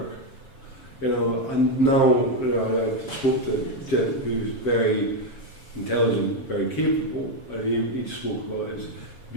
You know, and now, you know, I spoke to a gent who's very intelligent, very capable, and he spoke about his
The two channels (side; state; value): right; late; 7.0 ms